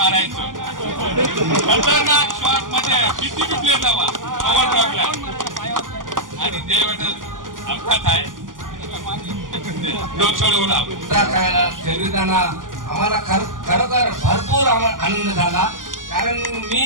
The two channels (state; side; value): late; left; 0.89 ms